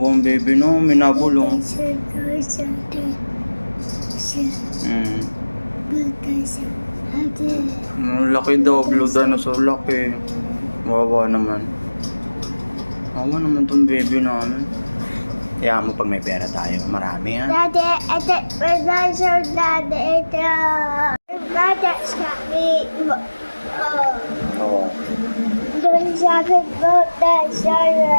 baby, no? Minabulong. Laki daw, Blue Dinosaur, laki. Wawa naman. Wawa naman tong baby namin. Kaya mo pag may pera tayo, marami ha. Daddy, ito, dinosaur, daddy, ito. Daddy, sabi mo. Oo. Doon sabi mo,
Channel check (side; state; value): both; inverted; correlation -1.00